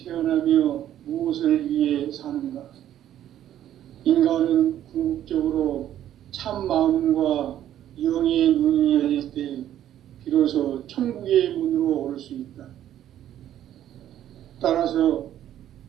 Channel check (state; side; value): quieter; left; 11.5 dB